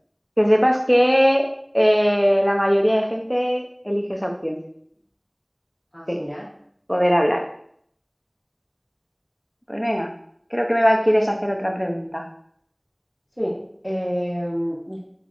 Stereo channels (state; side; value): identical; both; correlation 1.00